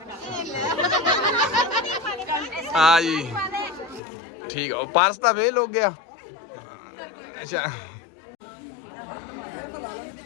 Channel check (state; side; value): drops out; right; at 4.0 s